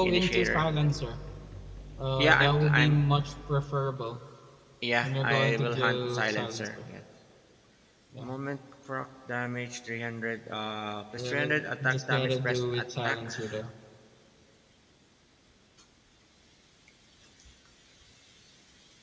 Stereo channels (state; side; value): identical; both; correlation 1.00